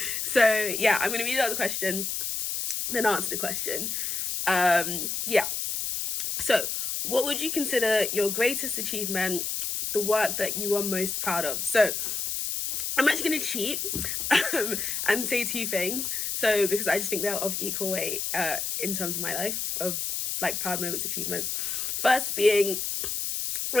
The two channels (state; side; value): noise; left; hiss, 2 dB below the sound